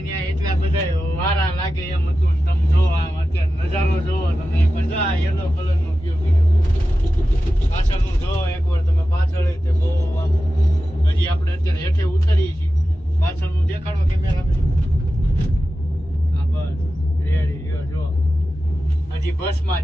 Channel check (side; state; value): both; normal; correlation 0.93